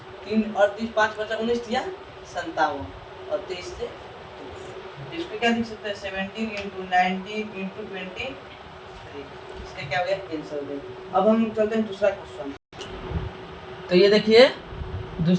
3 38 5 बचा 19 या 57 और 23 से इसको क्या लिख सकते हैं 17 इंटू 19 इंटू 23, इसका क्या हो गया आंसर हो गया। अब हम चलते हैं दूसरा क्वेश्चन। तो ये देखिए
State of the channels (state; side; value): identical; both; correlation 1.00